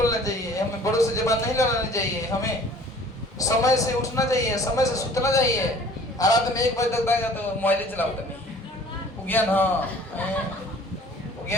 चाहिए, हमें बड़ों से जबान नहीं लड़ानी चाहिए, हमें समय से उठना चाहिए, समय से सुतना चाहिए। रात में 1 बजे तक बैठा तो मोबाइल चलाओ नहीं। ज्ञान हाँ,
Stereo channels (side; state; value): both; normal; correlation 0.50